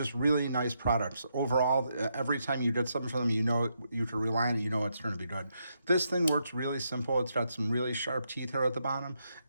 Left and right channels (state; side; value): inverted; both; correlation -0.80